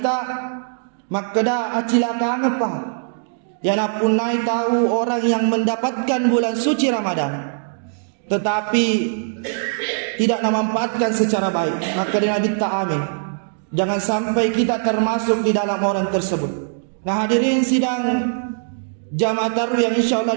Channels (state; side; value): silent; left; digital silence